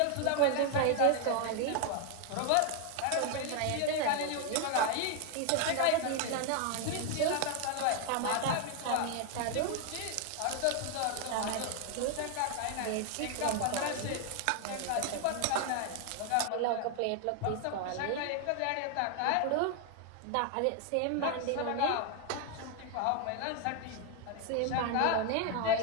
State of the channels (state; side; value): different; both; correlation 0.00